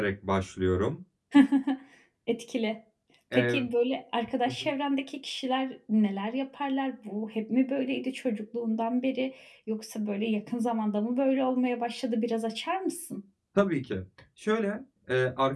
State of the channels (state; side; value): identical; both; correlation 1.00